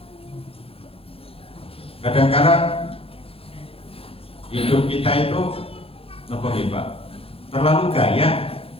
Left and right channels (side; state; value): right; late; 0.27 ms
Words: Kadang-kadang hidup kita itu apa hebat? Terlalu gaya.